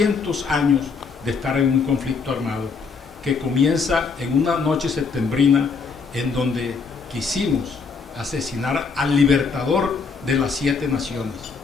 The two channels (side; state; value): right; quieter; 5.0 dB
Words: años de estar en un conflicto armado que comienza en una noche septembrina en donde quisimos asesinar al libertador de las 7 naciones.